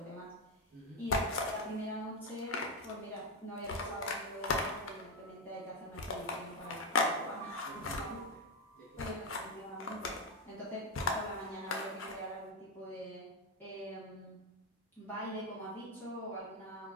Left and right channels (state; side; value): normal; both; correlation 0.08